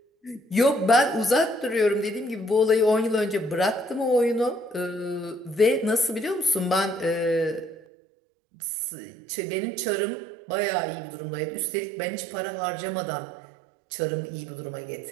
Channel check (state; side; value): drops out; left; at 7.8 s